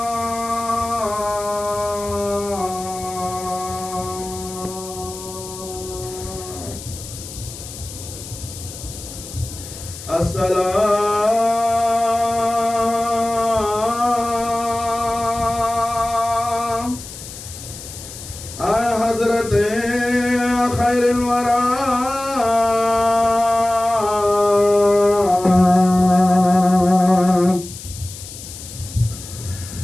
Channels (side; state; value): left; noise; hiss, 13 dB below the sound